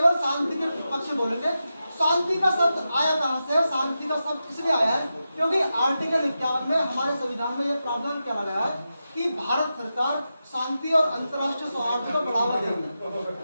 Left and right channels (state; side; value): inverted; both; correlation -0.90